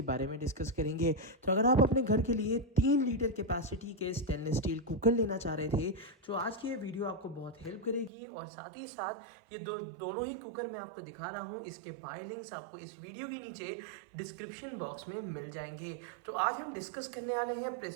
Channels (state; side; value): drops out; left; at 8.1 s